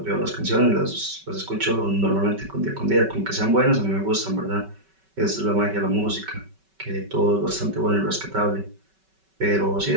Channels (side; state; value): left; late; 5.3 ms